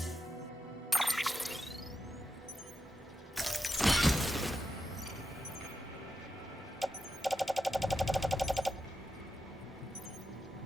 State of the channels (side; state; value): both; normal; correlation 0.88